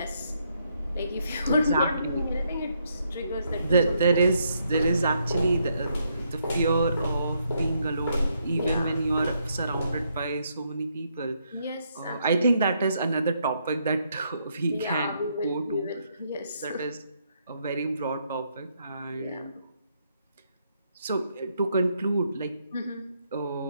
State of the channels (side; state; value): both; inverted; correlation -0.75